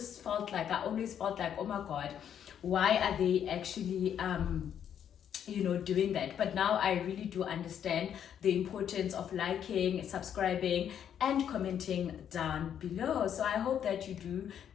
always felt like, oh my god, why are they actually doing that? But now I really do understand the importance of liking, subscribing and commenting down below. So I hope that you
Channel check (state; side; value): quieter; right; 9.1 dB